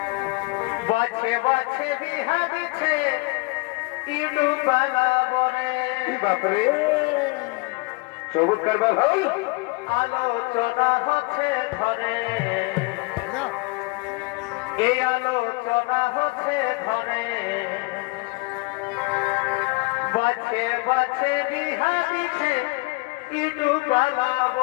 বাছে বাছে বিহা দিচ্ছে ইউটিউবালা বলে বাপরে চমৎকার ভাই আলোচনা হচ্ছে ঘরে এই আলোচনা হচ্ছে ঘরে বাছে বাছে বিহা দিচ্ছে ইউটিউবালা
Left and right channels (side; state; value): right; quieter; 27.3 dB